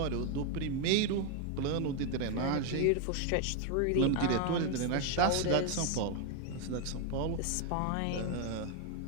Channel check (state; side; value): different; both; correlation 0.01